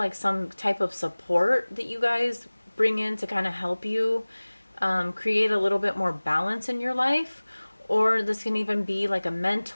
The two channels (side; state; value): both; inverted; correlation -1.00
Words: some type of support that you guys bring in to kind of help you create a little bit more balance in your life. Or this can even be like a